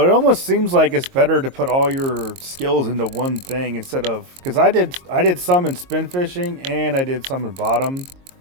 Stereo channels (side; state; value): left; late; 22 ms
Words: almost seems like it's better to put all your skills into one thing instead of, because I did some in spin fishing and I did some in bottom,